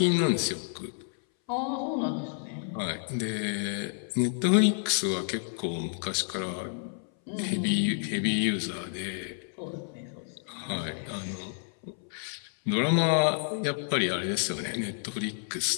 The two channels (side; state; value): right; silent; 58 dB below the other